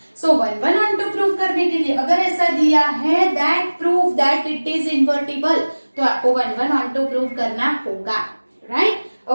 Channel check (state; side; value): inverted; both; correlation -1.00